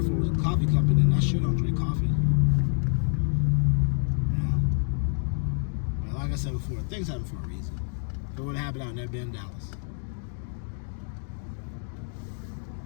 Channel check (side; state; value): right; silent; 55 dB below the other